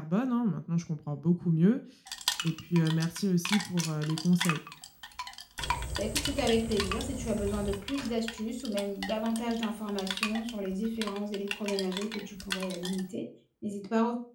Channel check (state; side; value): identical; both; correlation 1.00